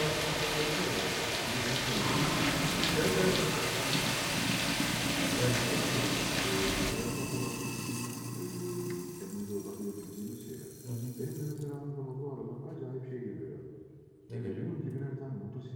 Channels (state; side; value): identical; both; correlation 1.00